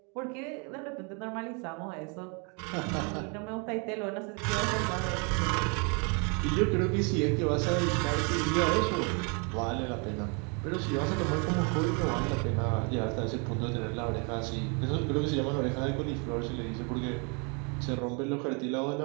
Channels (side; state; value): left; quieter; 34.8 dB